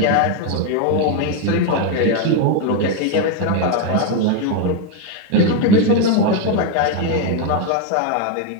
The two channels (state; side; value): different; both; correlation 0.01